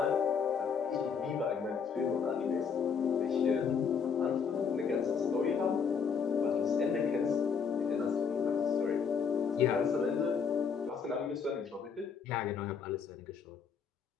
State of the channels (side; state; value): right; quieter; 6.3 dB